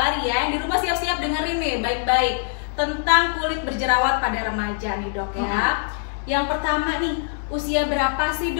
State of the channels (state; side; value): silent; right; digital silence